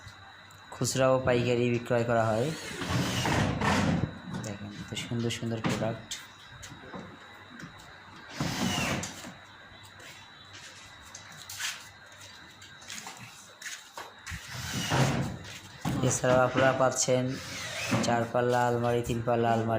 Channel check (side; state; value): both; identical; correlation 1.00